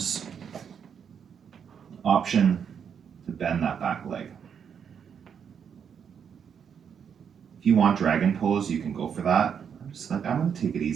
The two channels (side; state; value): left; quieter; 7.4 dB